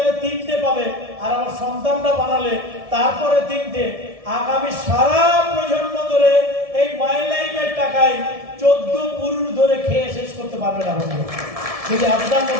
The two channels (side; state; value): left; late; 1.7 ms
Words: 3টে পাবে, আর আমার সন্তানরা বানালে তারপরে 3টে। আগামী সারা প্রজন্ম ধরে এই মাই লাইফের টাকায় 14 পুরুষ ধরে খেয়ে শেষ করতে পারবে না বন্ধু, যদি আপনার